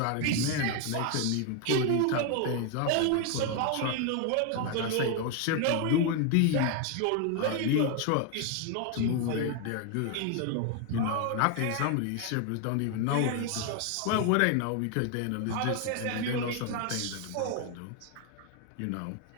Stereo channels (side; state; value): both; different; correlation 0.01